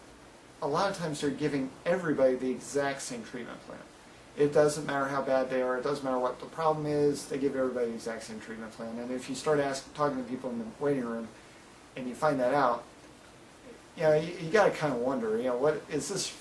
a lot of times they're giving everybody the exact same treatment plan. It doesn't matter how bad they are, it doesn't matter what the problem is, they give everybody the exact same treatment plan. And if you start talking to people in the waiting room and you find that out, you got to kind of wonder, what is this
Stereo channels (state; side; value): identical; both; correlation 1.00